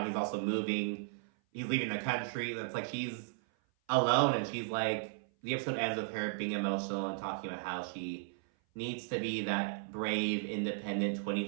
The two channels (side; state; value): left; silent; 54 dB below the other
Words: he's also moving. He's leaving the country. That's like, she's alone, and she's like, the episode ends with her being emotional and talking about how she needs to be that brave, independent